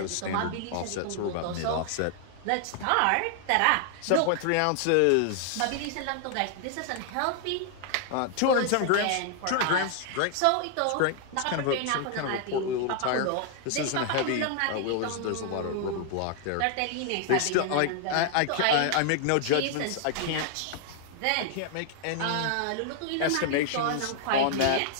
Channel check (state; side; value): different; both; correlation 0.00